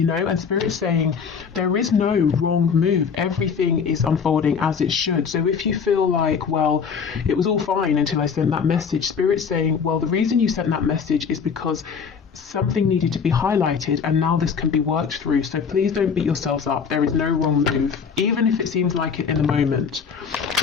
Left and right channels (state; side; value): quieter; right; 6.3 dB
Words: know. And Spirit's saying there is no wrong move. Everything is unfolding as it should. So if you feel like, well, it was all fine until I sent that message, Spirit's saying, well, the reason you sent that message is because something needed to be highlighted, and now this can be worked through. So please don't beat yourselves up. There is no wrong move, even if it seems like it in the moment.